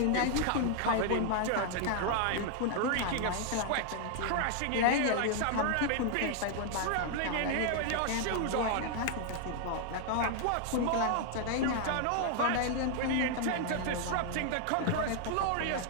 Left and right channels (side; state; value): both; different; correlation 0.00